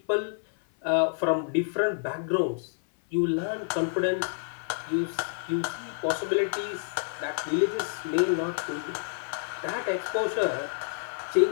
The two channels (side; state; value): right; silent; 55 dB below the other